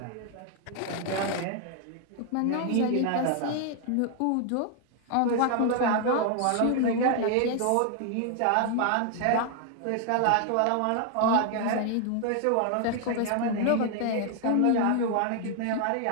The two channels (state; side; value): different; both; correlation 0.00